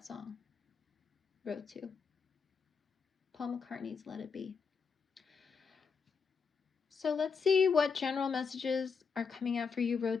song. Row 2. Paul McCartney's Let It Be. So let's see what general messages are coming out for you, row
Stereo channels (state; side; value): quieter; right; 5.6 dB